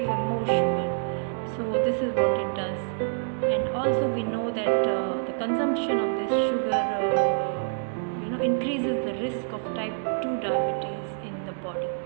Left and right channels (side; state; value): left; silent; digital silence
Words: for more sugar. So this is what it does. And also we know that the consumption of this sugar increases the risk of type 2 diabetes in the body.